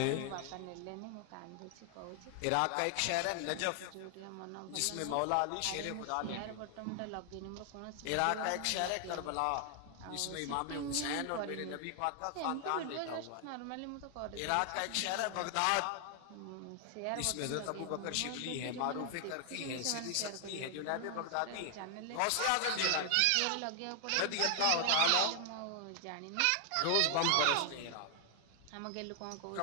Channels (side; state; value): both; different; correlation 0.00